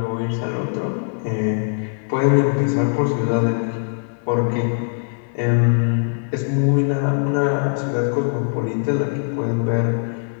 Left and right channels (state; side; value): silent; right; 65 dB below the other